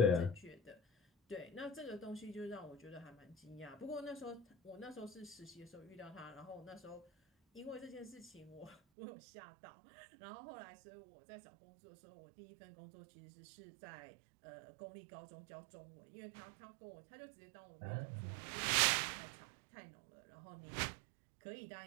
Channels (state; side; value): drops out; left; at 8.8 s